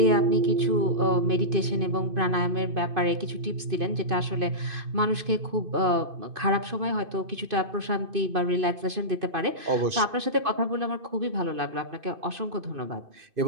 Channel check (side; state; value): left; late; 2.5 ms